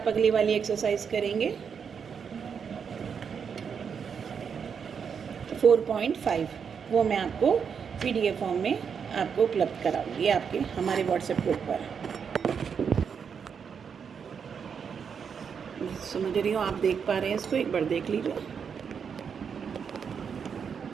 अगली वाली एक्सरसाइज करेंगे 4.5, वो मैं आपको PDF फॉर्म में आपको उपलब्ध कराऊंगी आपके हमारे व्हाट्सएप ग्रुप पर। समझ रही हो, आप देख पा रहे हैं इसको, एक बार देख लीजिए।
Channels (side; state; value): left; quieter; 6.7 dB